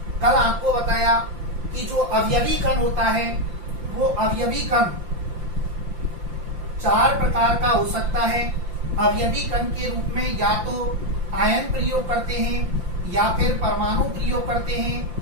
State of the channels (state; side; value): late; left; 5.8 ms